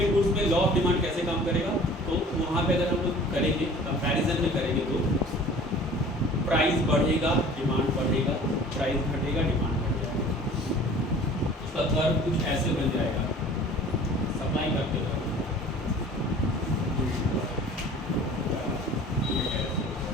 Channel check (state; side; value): normal; both; correlation 0.46